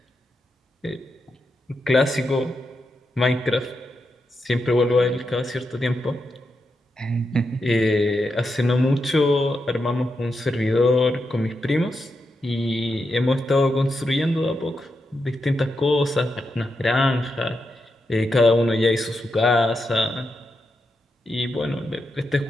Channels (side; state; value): both; normal; correlation 0.85